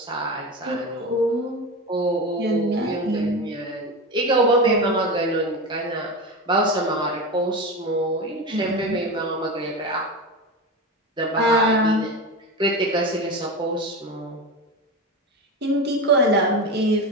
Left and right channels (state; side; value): normal; both; correlation 0.23